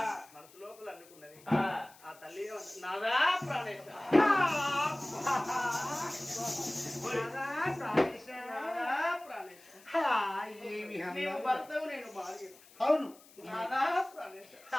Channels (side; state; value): left; noise; hiss, 24 dB below the sound